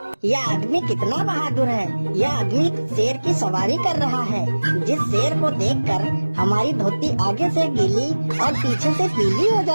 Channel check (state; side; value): inverted; both; correlation -1.00